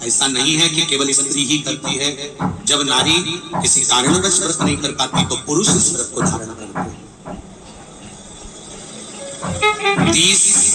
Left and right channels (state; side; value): identical; both; correlation 1.00